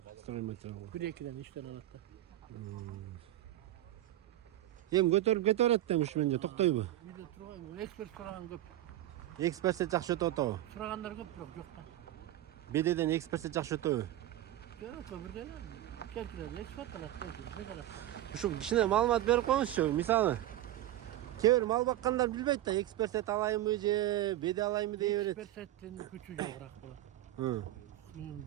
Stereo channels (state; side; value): quieter; left; 14.1 dB